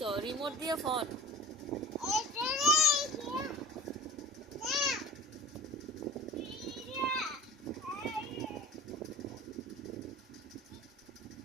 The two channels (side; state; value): both; normal; correlation 0.41